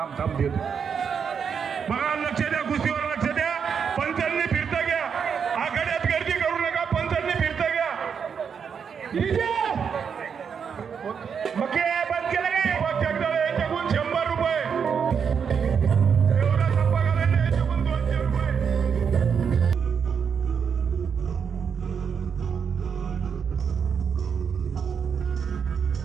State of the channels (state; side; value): quieter; left; 6.8 dB